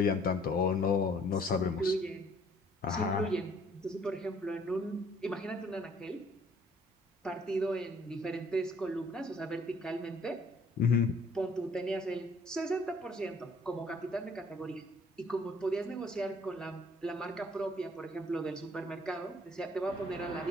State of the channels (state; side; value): normal; both; correlation 0.59